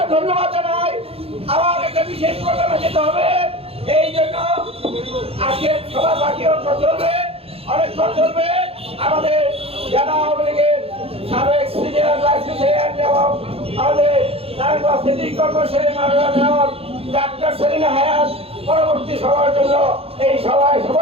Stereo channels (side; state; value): left; late; 0.28 ms